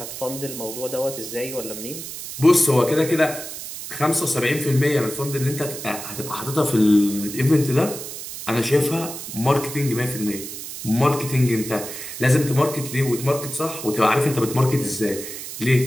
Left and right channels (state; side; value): noise; right; hiss, 9 dB below the sound